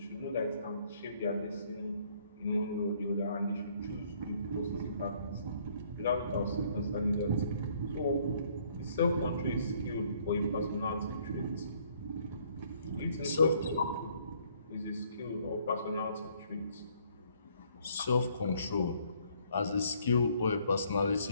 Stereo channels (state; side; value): inverted; both; correlation -0.64